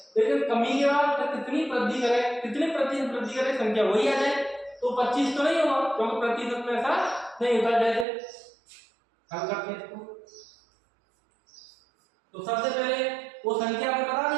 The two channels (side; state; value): left; drops out; at 8.1 s